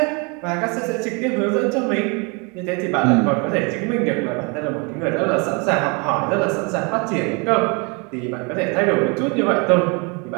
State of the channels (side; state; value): left; quieter; 31.9 dB